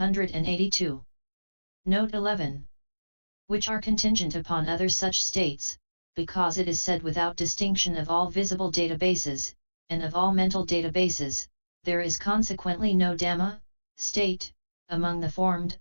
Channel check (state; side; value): inverted; both; correlation -1.00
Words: Note 11. Which are contingent upon other such states, because it is said without distinction of all visible databases, and of all mental databases, there is consequently no Dhamma, state, among the formed,